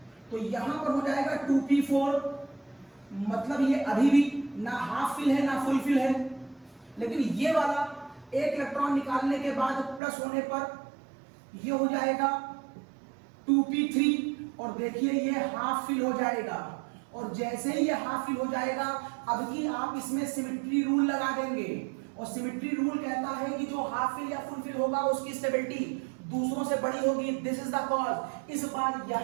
तो यहां पर हो जाएगा 2p4। मतलब ये अभी भी ना हाफ फिल है ना फुल फिल है, लेकिन ये वाला एक इलेक्ट्रॉन निकालने के बाद प्लस होने पर ये हो जाएगा 2p3, और देखिए ये हाफ फिल हो जाएगा। और जैसे ही ये हाफ फिल हो जाएगा अब की आप इसमें सिमेट्री रूल लगा देंगे, और सिमेट्री रूल कहता है कि जो हाफ फिल या फुल फिल होगा उसकी स्टेबिलिटी दूसरों से बड़ी होगी। This is the cause. इस बार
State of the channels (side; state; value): left; drops out; at 10.0 s